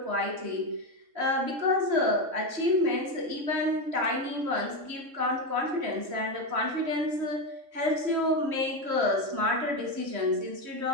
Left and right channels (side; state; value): left; late; 3.6 ms